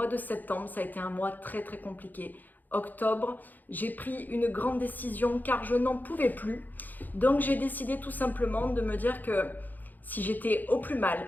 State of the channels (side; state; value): right; late; 0.085 ms